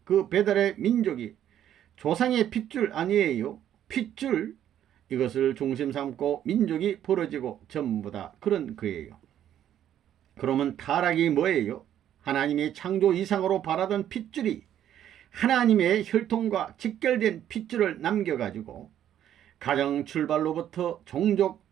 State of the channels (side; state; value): left; quieter; 10.8 dB